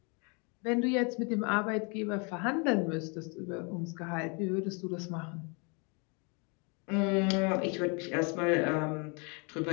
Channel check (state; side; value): quieter; right; 33.3 dB